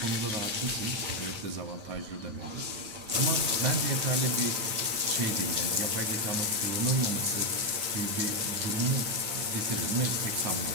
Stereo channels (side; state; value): left; late; 8.9 ms